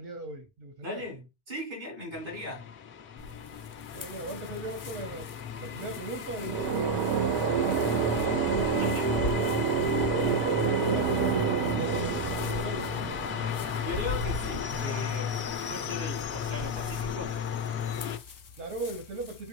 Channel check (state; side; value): late; left; 4.2 ms